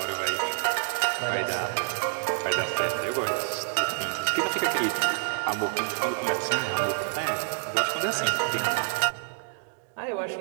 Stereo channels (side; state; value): left; silent; 60 dB below the other